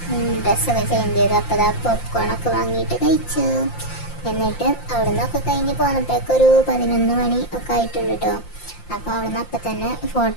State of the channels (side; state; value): right; late; 5.7 ms